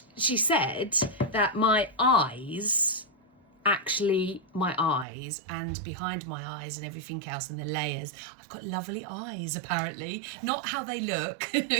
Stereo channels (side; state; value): left; drops out; at 5.1 s